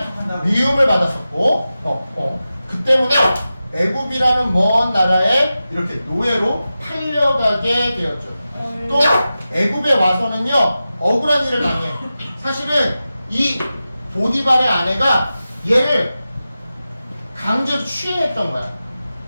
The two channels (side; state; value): both; inverted; correlation -0.93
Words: 미움을 받았었고, 그 때문에 애굽이라는 먼 나라에 이렇게 노예로 팔려가게 되었죠. 또 애굽에 와서는요, 억울한 일을 당해요. 사실은 이 보디발의 아내가 얘를 강제로 취해냈던 거야.